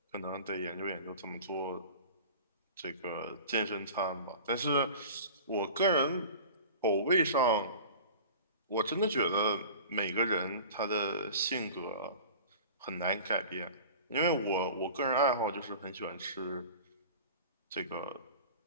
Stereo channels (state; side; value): inverted; both; correlation -0.39